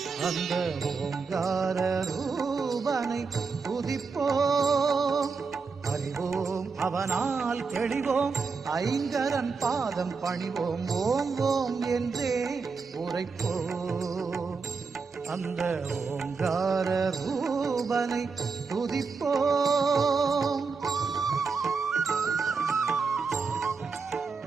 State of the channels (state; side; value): quieter; left; 4.9 dB